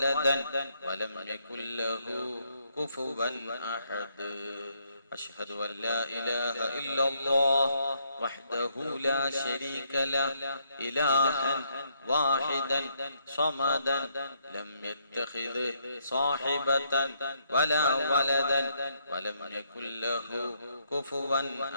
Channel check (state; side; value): inverted; both; correlation -0.73